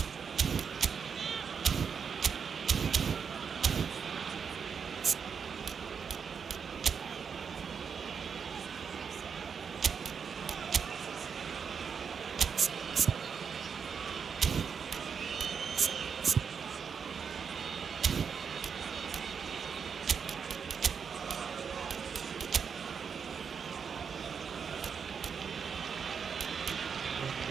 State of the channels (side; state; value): left; quieter; 6.5 dB